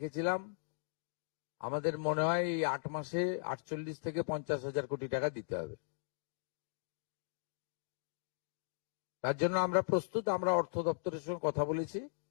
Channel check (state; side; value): silent; right; digital silence